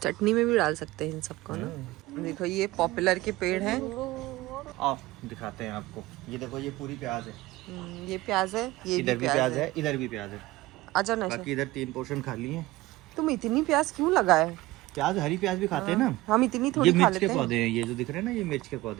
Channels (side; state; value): left; quieter; 18.9 dB